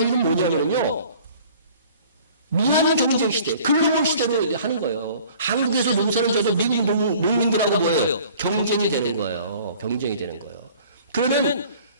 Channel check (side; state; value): both; inverted; correlation -0.50